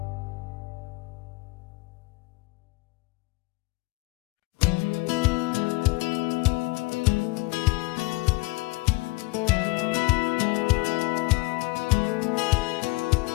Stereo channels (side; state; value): right; quieter; 24.2 dB